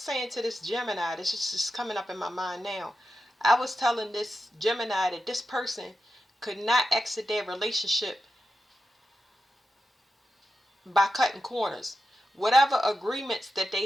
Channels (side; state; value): both; normal; correlation 0.89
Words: to this Gemini. This is just coming up in my mind now. I was telling this Gemini that this person could not exit their relationship by cutting corners. Whatever agreements that they